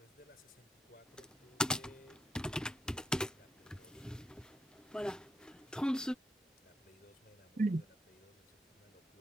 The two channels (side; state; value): both; normal; correlation 0.78